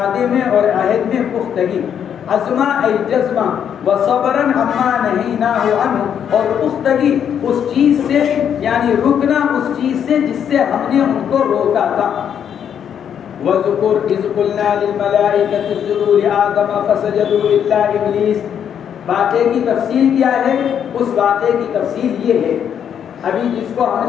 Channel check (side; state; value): right; quieter; 8.6 dB